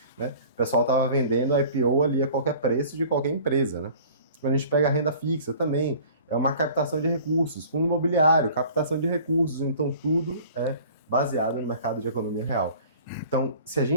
né? O pessoal estava vendendo IPO ali a qualquer preço de qualquer empresa, né? Quando a gente pega a renda fixa também, é uma captação de recursos, fundo imobiliário, captação de recursos, então tudo é baseado no mercado de economia real. Então, se a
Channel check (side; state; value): both; inverted; correlation -0.47